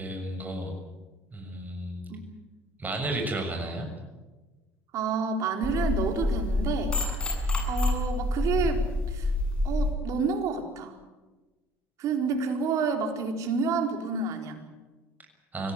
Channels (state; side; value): normal; both; correlation 0.54